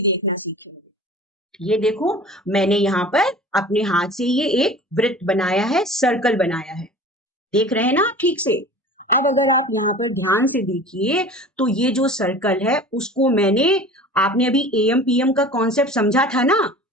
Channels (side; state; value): both; normal; correlation 0.40